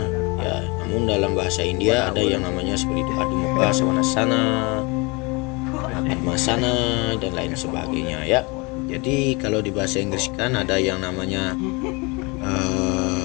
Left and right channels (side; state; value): right; quieter; 27.9 dB